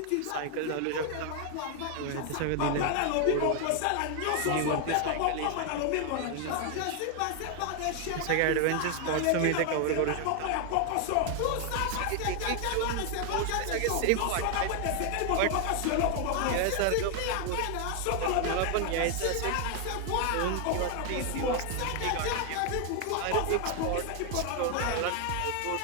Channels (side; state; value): both; different; correlation 0.00